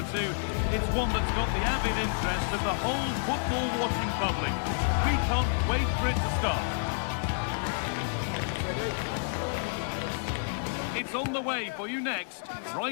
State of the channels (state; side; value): silent; right; 57 dB below the other